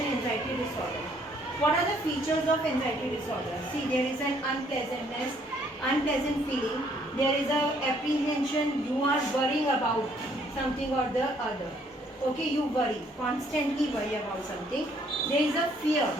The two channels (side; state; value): both; normal; correlation 0.65